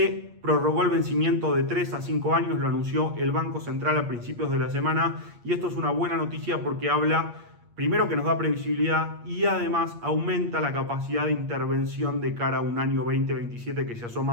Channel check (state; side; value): late; left; 8.5 ms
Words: prorrogó el vencimiento de 3 a 5 años, lo anunció el Banco Central a principios de la semana, y esto es una buena noticia porque habla, primero, que nos da previsibilidad, y además aumenta la capacidad de intervención de cara a un año 2027 que se